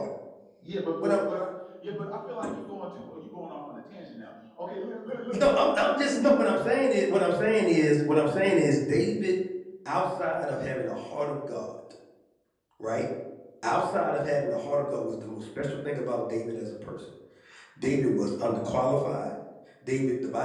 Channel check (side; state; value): both; identical; correlation 1.00